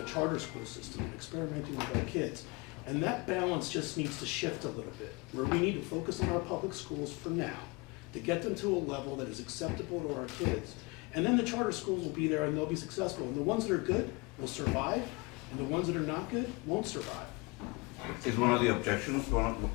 a charter school system and experimenting with our kids. And that balance just needs to shift a little bit, where we need to focus on our public schools for now to get them to a level that is acceptable to our kids. And then the charter schools will be there and they'll be successful. And the ones that are good will survive, and the ones that are not good won't survive. Is one of the objections,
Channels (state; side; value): quieter; right; 26.5 dB